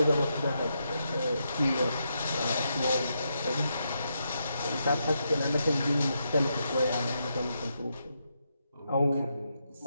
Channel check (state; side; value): inverted; both; correlation -0.82